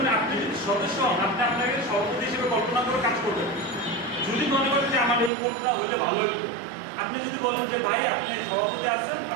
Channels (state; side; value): drops out; left; at 5.3 s